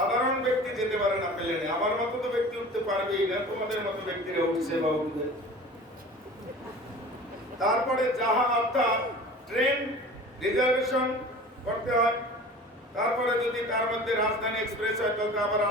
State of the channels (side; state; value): both; normal; correlation 0.40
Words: ব্যক্তি যেতে পারে না প্লেনে। আমার মতো তো ব্যক্তি উঠতে পারবেই না, তোমাদের মতো ব্যক্তিরা উঠছে বা উঠবে। তারপরে জাহাজ অর্থাৎ ট্রেন রিজার্ভেশন করতে হয়। তারপরে যদি তার মধ্যে রাজধানী এক্সপ্রেস হয় তাহলে আবার